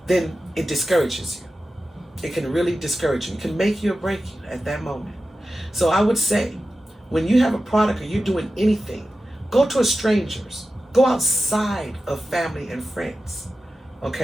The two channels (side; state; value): both; normal; correlation 0.93